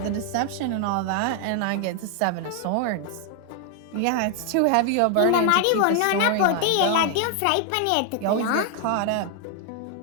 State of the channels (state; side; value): different; both; correlation 0.00